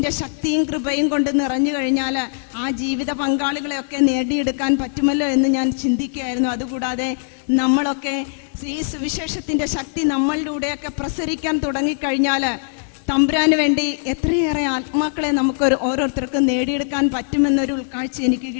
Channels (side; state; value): right; silent; 65 dB below the other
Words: ശക്തിയും കൃപയും കൊണ്ട് നിറഞ്ഞു കഴിഞ്ഞാൽ ആ ജീവിത പങ്കാളികളെയൊക്കെ നേടിയെടുക്കാൻ പറ്റുമല്ലോ എന്ന് ഞാൻ ചിന്തിക്കുകയായിരുന്നു. അതുകൂടാതെ നമ്മളൊക്കെ ഈ സുവിശേഷത്തിൻ്റെ ശക്തി നമ്മളിലൂടെയൊക്കെ പ്രസരിക്കാൻ തുടങ്ങിക്കഴിഞ്ഞാൽ തമ്പുരാന് വേണ്ടി എത്രയേറെ ആത്മാക്കളെ നമുക്ക് ഓരോരുത്തർക്കും നേടിയെടുക്കാൻ പറ്റുമെന്നൊരു ഉൾക്കാഴ്ച എനിക്ക്